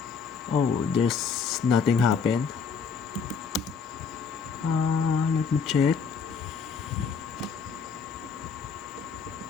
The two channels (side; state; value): right; quieter; 5.7 dB